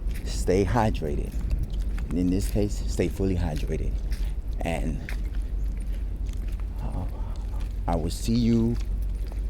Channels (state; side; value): identical; both; correlation 1.00